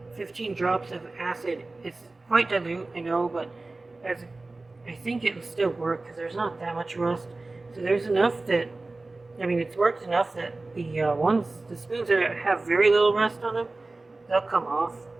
15 drops of acid. It's quite dilute, I know, but I think it'll still work because there's not that much rust. So there's enough that, I mean, it's worked enough that the spoons that have very little rust on them, they'll come off.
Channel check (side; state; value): left; quieter; 3.2 dB